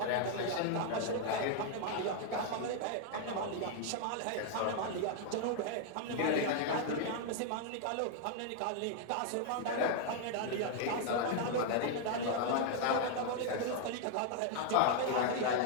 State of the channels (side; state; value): both; different; correlation 0.00